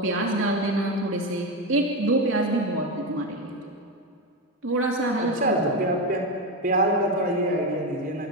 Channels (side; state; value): both; normal; correlation 0.14